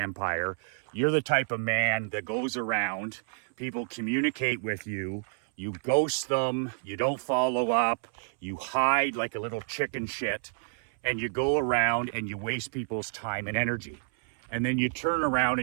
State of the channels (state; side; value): silent; left; 58 dB below the other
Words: you're the type of man that goes around, people communicate with you, you ghost them, you don't follow up, you hide like a little chicken shit, and you go around and you waste people's time and energy. And then you turn around